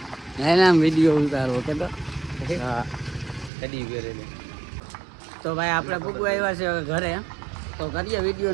એના વિડીયો ઉતારો કે તો. હા કદી વેરે ને. તો ભાઈ આપણે પૂગવા આવ્યા છે હવે ઘરે. તો કરીએ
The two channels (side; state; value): left; drops out; at 3.5 s